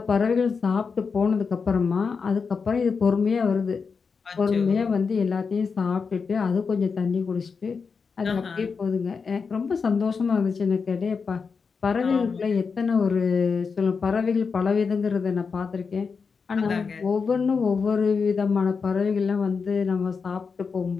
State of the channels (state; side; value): quieter; right; 5.3 dB